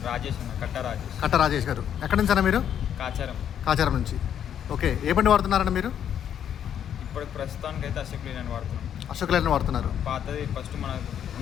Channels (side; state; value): right; quieter; 9.3 dB